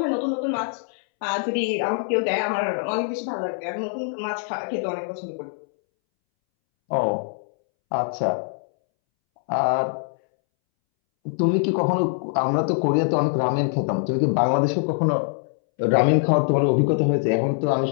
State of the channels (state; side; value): silent; right; 63 dB below the other